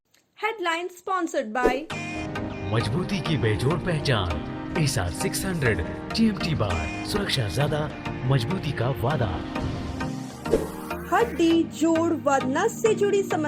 हेडलाइन स्पॉन्सर्ड बाय मजबूती की बेजोड़ पहचान एसआर 600 TMT बार, सुरक्षा ज्यादा, मजबूती का वादा। हड्डी, जोड़ व नस से जुड़ी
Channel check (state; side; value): identical; both; correlation 1.00